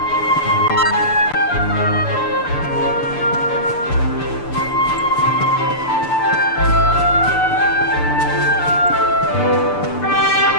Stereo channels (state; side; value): late; right; 6.8 ms